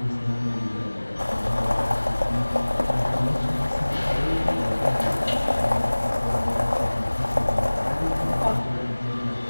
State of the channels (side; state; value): both; inverted; correlation -1.00